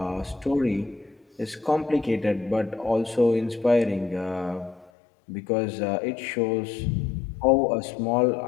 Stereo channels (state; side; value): drops out; right; at 4.9 s